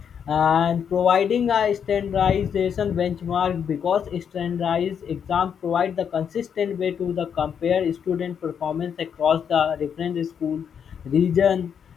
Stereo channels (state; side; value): quieter; right; 7.7 dB